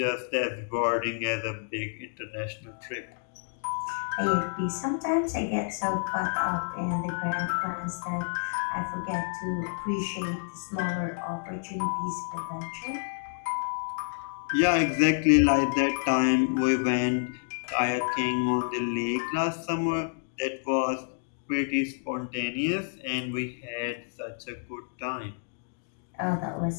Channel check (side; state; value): right; silent; digital silence